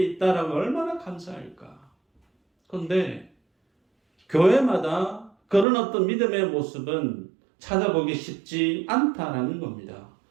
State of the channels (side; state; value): left; drops out; at 5.7 s